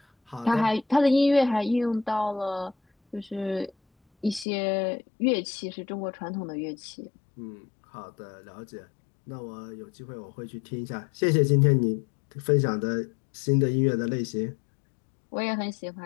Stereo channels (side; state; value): right; drops out; at 4.5 s